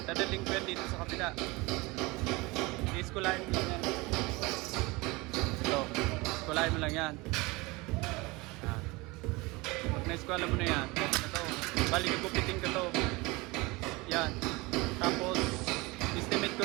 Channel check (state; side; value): quieter; left; 23.7 dB